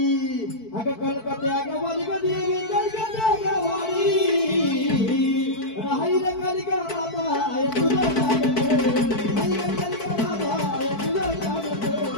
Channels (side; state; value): right; late; 4.5 ms